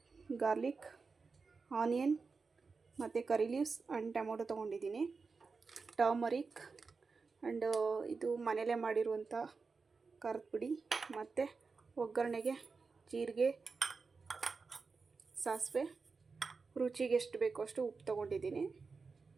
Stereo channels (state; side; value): quieter; left; 4.6 dB